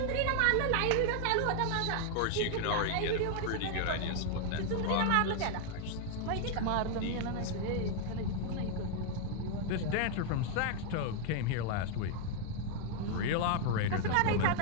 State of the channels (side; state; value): both; different; correlation 0.00